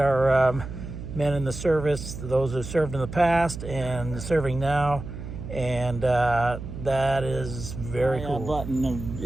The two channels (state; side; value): noise; right; hum, 9 dB below the sound